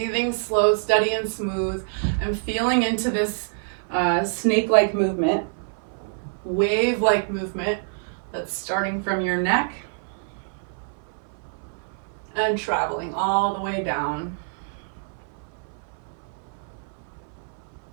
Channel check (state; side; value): silent; left; 61 dB below the other